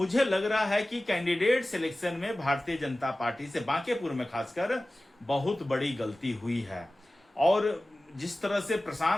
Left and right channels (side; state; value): both; normal; correlation 0.96